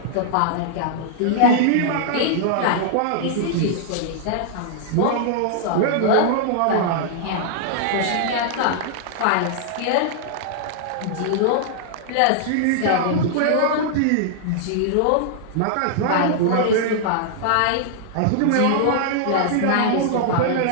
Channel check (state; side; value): different; both; correlation -0.01